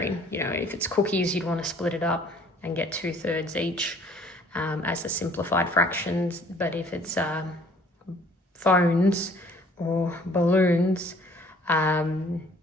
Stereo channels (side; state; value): both; normal; correlation 0.57